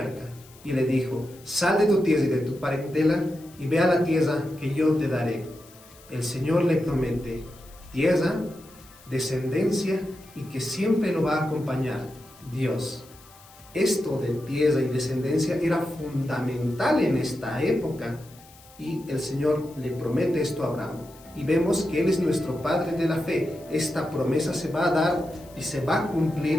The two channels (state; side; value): noise; left; hiss, 24 dB below the sound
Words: y le dijo: sal de tu tierra y de tu parentela y ve a la tierra que yo te daré. El Señor le promete tierra, descendencia y que siempre lo va a acompañar Dios. Esto de tierra y descendencia era fundamental en esta época y el Señor le promete esto a Abraham y vemos que Él es nuestro Padre de la fe. Esta promesa se va a dar y se va a